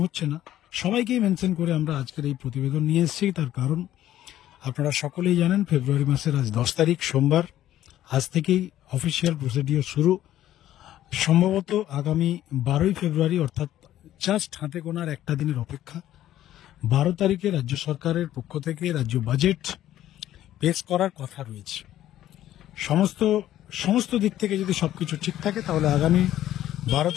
হচ্ছে না, সবাইকেই মেনশন করে আমরা আজকের এই প্রতিবেদন নিয়ে এসেছি। তার কারণ আপনারা সকলেই জানেন, ফেব্রুয়ারি মাসের আজ 10 তারিখ, সোমবার। আজ থেকেই অফিসিয়াল প্রসিডিওর শুরু। সম্ভবত আগামী 12ই ফেব্রুয়ারি, অর্থাৎ জাস্ট হাতে গোনার একটা দিনের অপেক্ষা, 12 তারিখে রাজ্য সরকারের পক্ষ থেকে রাজ্য বাজেট পেশ করার কথা রয়েছে। সমস্ত দিক থেকে যদি সবকিছু ঠিক থাকে, তাহলে আগামী 12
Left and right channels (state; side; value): quieter; right; 12.8 dB